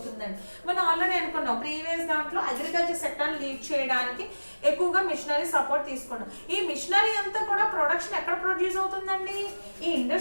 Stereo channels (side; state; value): both; inverted; correlation -1.00